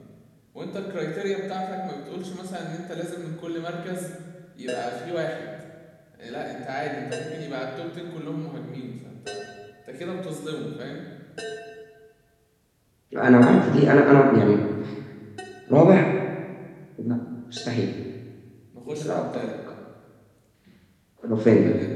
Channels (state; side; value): identical; both; correlation 1.00